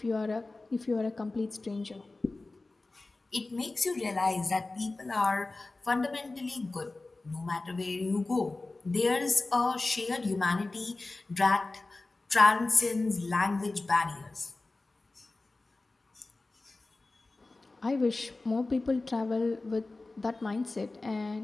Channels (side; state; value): right; quieter; 3.2 dB